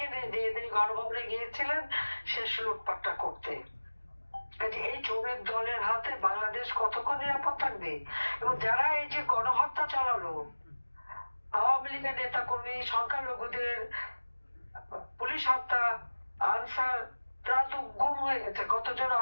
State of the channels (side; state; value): both; inverted; correlation -1.00